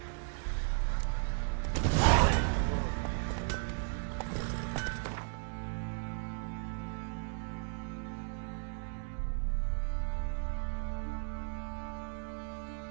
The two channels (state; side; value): silent; left; 54 dB below the other